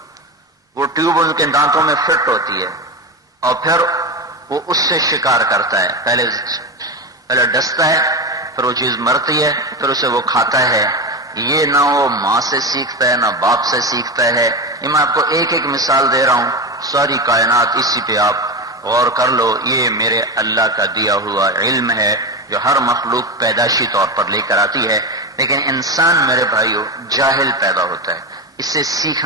وہ ٹیوب ان کے دانتوں میں فٹ ہوتی ہے اور پھر وہ اس سے شکار کرتا ہے. پہلے ڈستا ہے، پھر وہ چیز مرتی ہے، پھر اسے وہ کھاتا ہے. یہ نہ وہ ماں سے سیکھتا ہے نہ باپ سے سیکھتا ہے. یہ میں آپ کو ایک ایک مثال دے رہا ہوں، ساری کائنات اسی پہ آپ غور کر لو. یہ میرے اللہ کا دیا ہوا علم ہے جو ہر مخلوق پیدائشی طور پر لے کر آتی ہے. لیکن انسان میرے بھائیوں جاہل پیدا ہوتا ہے، اس سے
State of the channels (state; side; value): normal; both; correlation 0.18